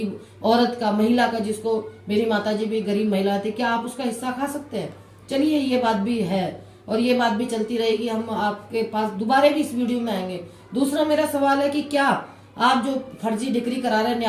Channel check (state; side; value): identical; both; correlation 1.00